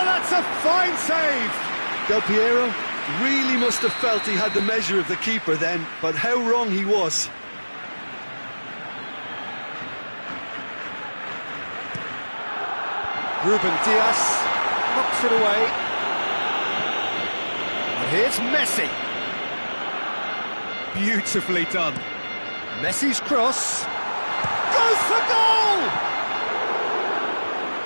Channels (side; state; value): both; inverted; correlation -1.00